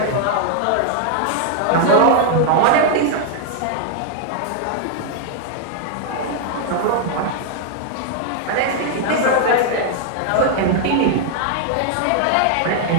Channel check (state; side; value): different; both; correlation 0.00